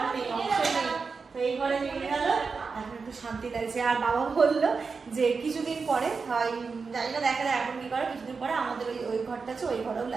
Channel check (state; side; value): quieter; left; 4.9 dB